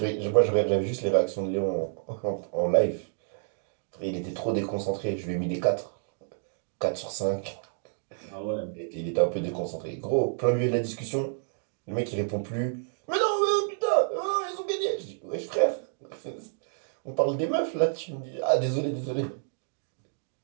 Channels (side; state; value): left; silent; digital silence